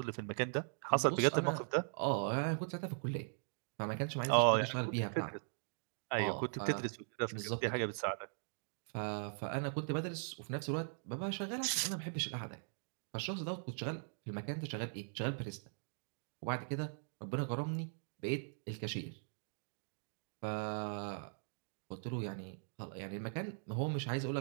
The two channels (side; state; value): left; silent; digital silence